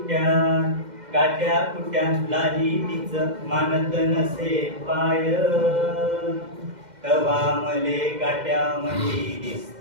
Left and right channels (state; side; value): late; left; 2.1 ms